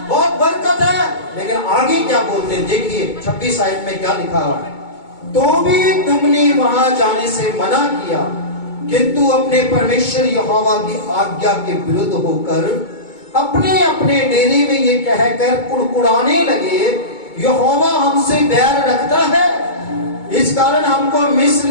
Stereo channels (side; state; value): right; late; 2.2 ms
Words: बहुत बरकत है, लेकिन आगे क्या बोलते हैं देखिए 26 आयत में क्या लिखा हुआ है। तो भी तुमने वहां जाने से मना किया, किंतु अपने परमेश्वर यहोवा की आज्ञा के विरुद्ध होकर अपने अपने डेरे में ये कहकर कुड़कुड़ाने लगे, यहोवा हमसे बैर रखता है, इस कारण हमको